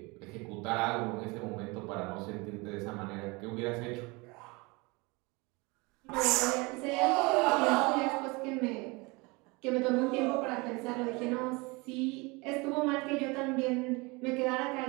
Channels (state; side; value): quieter; left; 26.1 dB